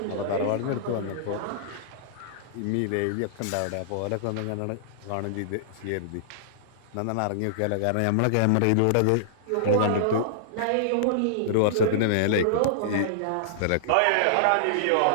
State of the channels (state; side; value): different; both; correlation -0.02